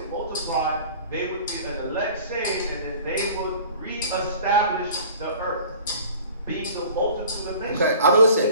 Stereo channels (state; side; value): inverted; both; correlation -0.45